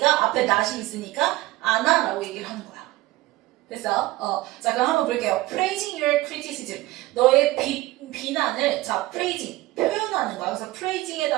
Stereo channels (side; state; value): left; quieter; 18.3 dB